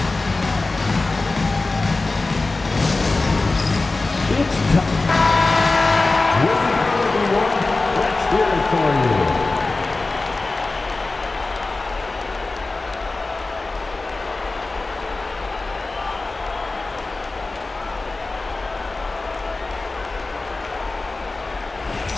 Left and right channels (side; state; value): right; quieter; 3.4 dB